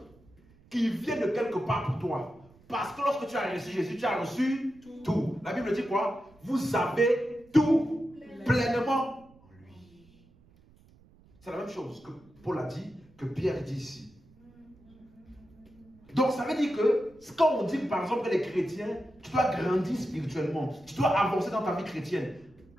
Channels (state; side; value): noise; right; rumble, 28 dB below the sound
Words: qui vient de quelque part pour toi. Parce que lorsque tu as reçu Jésus, tu as reçu tout. La Bible dit quoi? Vous avez tout pleinement en lui. C'est la même chose que Paul a dit, que Pierre dit ici. Donc ça veut dire que quand on dit par exemple que les chrétiens, tu dois grandir spirituellement, tu dois avancer dans ta vie chrétienne.